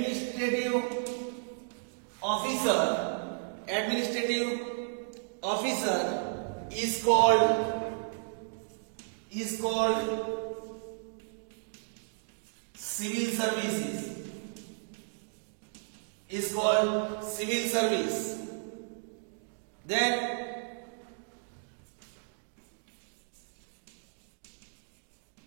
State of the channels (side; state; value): left; silent; digital silence